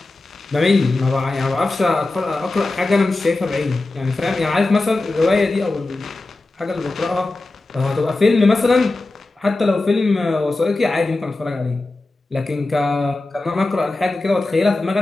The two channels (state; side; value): quieter; right; 3.1 dB